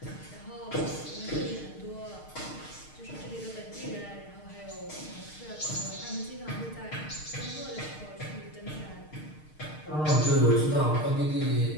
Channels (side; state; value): right; late; 6.5 ms